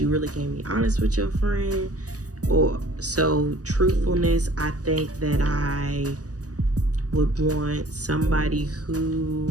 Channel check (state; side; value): late; left; 0.67 ms